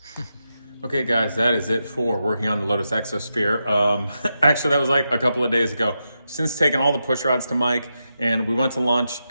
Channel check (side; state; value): both; inverted; correlation -0.87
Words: Okay guys, that is it for working on the Lotus Exosphere. Actually, that was like a couple of days ago. Since taking all the push rods to Mike, and we went to lunch,